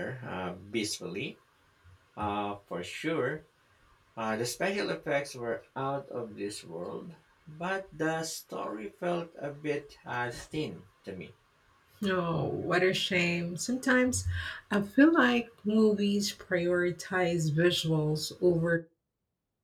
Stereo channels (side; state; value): both; identical; correlation 1.00